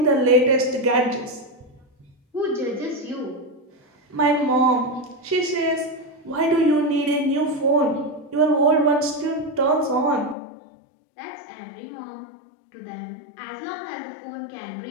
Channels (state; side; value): drops out; right; at 10.4 s